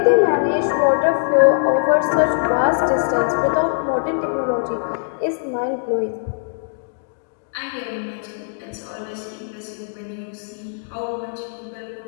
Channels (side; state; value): right; silent; digital silence